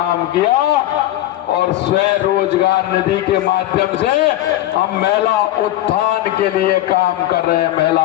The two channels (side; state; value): right; quieter; 14.4 dB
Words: किया, और स्वयं रोजगार निधि के माध्यम से हम महिला उत्थान के लिए काम कर रहे हैं,